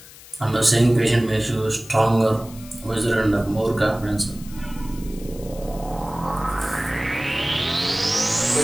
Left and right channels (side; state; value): left; noise; hiss, 19 dB below the sound